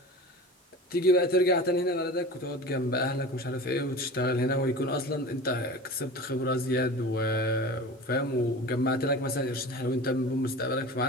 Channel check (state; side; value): normal; both; correlation 0.35